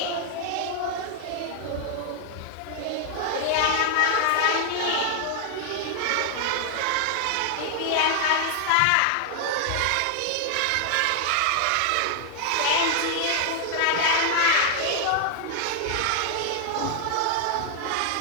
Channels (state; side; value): different; both; correlation 0.00